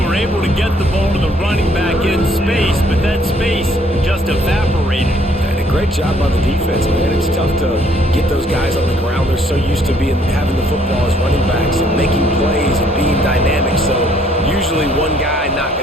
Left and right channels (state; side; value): normal; both; correlation 0.64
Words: able to get the ball to the running back in space, but that space just evaporated. And a great job by the defense, man. It's tough to get those guys on the ground. They're so used to having the football as running backs and making plays and being dynamic. So usually one guy not